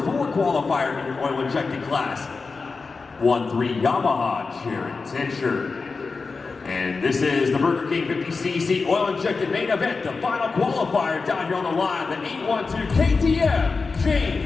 4 qualifier in your oil injected class, 1-3 Yamaha Jared Tincher. And this is the Burger King 50cc oil injected main event, the final qualifier down here on the line, the 812 KTM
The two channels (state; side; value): quieter; right; 4.4 dB